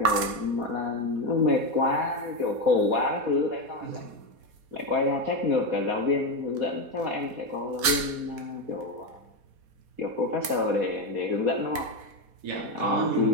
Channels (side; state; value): left; late; 4.2 ms